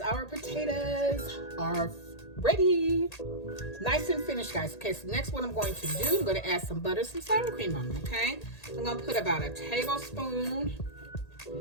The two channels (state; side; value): late; right; 1.8 ms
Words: potatoes are ready. Nice and finished, guys. Okay, so next what I'm going to do, I'm going to add some butter, some sour cream on them, okay? I'm going to put about a tablespoon